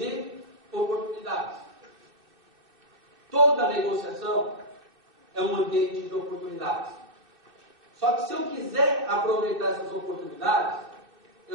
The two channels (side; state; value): left; late; 2.6 ms